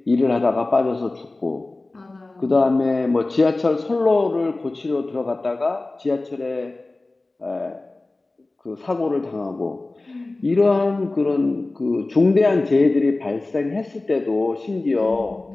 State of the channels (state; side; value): quieter; right; 3.1 dB